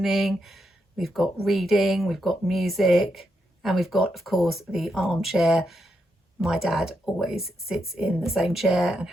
we've got reading, we've got music, and we've got, of course, the armchair. My dad always sits in the same chair and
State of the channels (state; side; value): normal; both; correlation 0.82